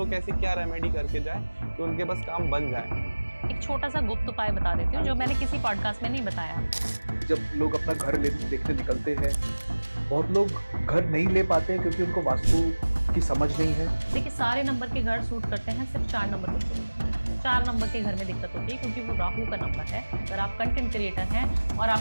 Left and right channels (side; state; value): both; inverted; correlation -1.00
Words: ऐसी क्या रेमेडी करके जाए कि उनके पास काम बन जाए? एक छोटा सा गुप्त उपाय बता देती हूँ जो मैंने किसी पॉडकास्ट में नहीं बताया। जब लोग अपना घर देखने निकलते हैं, बहुत लोग घर नहीं ले पाते हैं क्योंकि उनको वास्तु की समझ नहीं है। देखिए सारे नंबर के घर सूट करते हैं, सिर्फ 4 नंबर को सूट करते हैं। 4 नंबर के घर में दिक्कत होती है क्योंकि वो राहु का नंबर है। अगर आप कंटेंट क्रिएटर हैं और